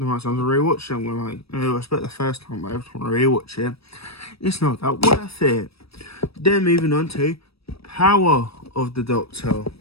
amount of times I rewatch it, I'm like, I expect the first time, but every time I rewatch it, it's not that worth it. Then moving on to Power of the Doctor.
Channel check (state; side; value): late; right; 0.77 ms